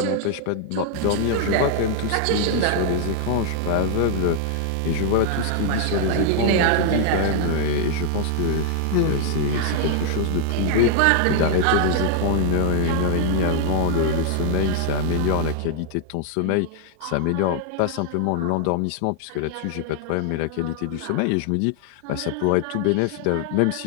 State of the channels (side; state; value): both; different; correlation 0.00